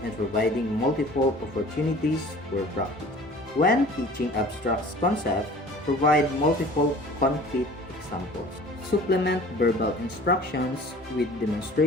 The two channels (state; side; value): normal; both; correlation 0.46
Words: and providing multiple opportunities for practice. When teaching abstract concepts, provide multiple concrete examples. Supplement verbal instructions with